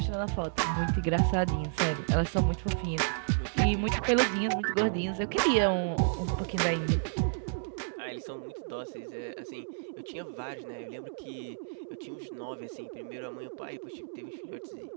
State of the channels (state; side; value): silent; left; digital silence